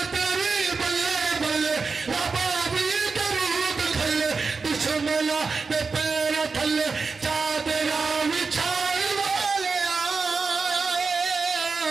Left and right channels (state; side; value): quieter; left; 4.6 dB